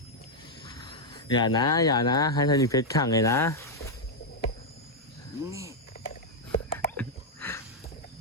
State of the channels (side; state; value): both; normal; correlation -0.01